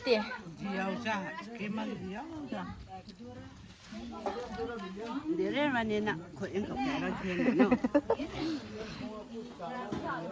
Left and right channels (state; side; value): identical; both; correlation 1.00